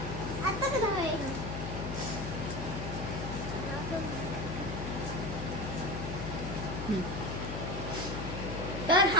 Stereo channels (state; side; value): noise; left; hum, 4 dB below the sound